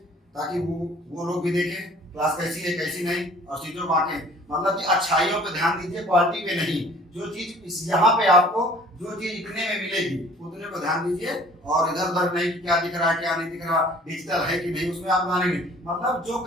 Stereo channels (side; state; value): both; normal; correlation 0.52